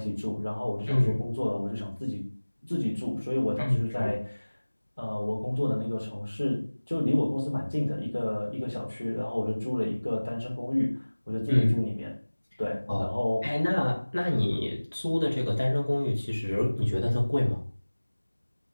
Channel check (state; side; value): inverted; both; correlation -1.00